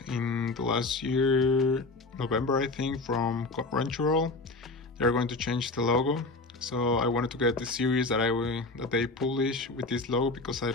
in the last year, November I think, from Crunchyroll, they're going to change the logo. So I wanted to get the series that they publish with this logo because I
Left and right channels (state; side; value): quieter; right; 3.3 dB